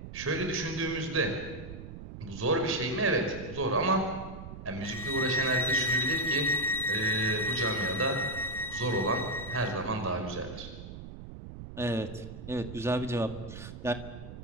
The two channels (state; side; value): noise; right; rumble, 11 dB below the sound